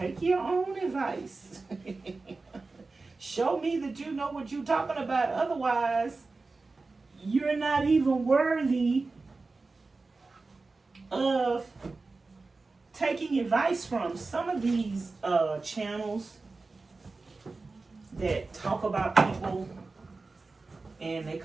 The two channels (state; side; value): quieter; left; 3.7 dB